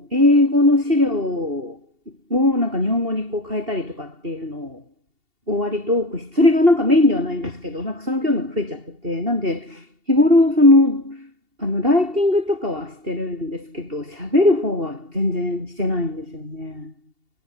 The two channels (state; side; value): late; left; 2.7 ms